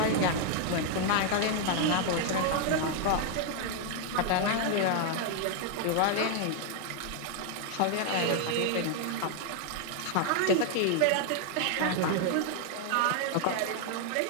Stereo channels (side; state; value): both; different; correlation 0.00